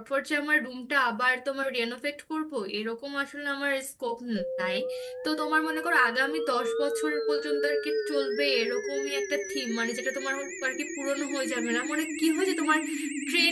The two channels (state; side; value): identical; both; correlation 1.00